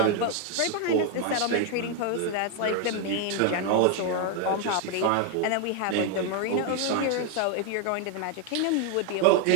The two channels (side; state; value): both; different; correlation 0.00